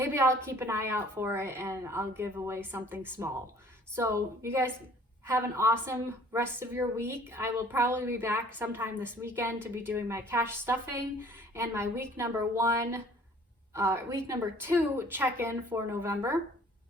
I'll keep an eye out for it and I'll give away something small. So you guys have an awesome rest of your week. I will probably be back sometime this weekend to be doing my cash stuffing and my week number 2 check-in for November.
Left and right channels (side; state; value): both; normal; correlation 0.54